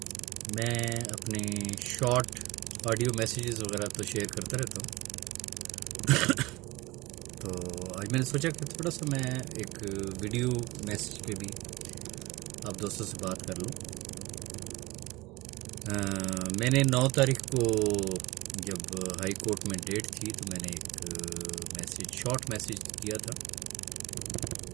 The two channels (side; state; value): left; quieter; 21.3 dB